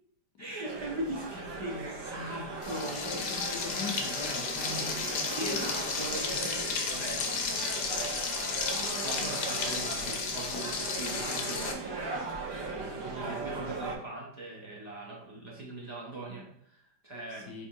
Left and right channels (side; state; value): right; late; 5.0 ms